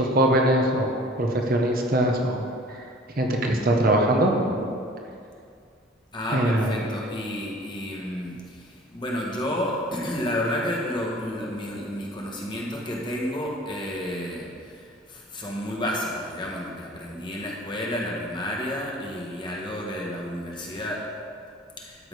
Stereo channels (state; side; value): normal; both; correlation 0.47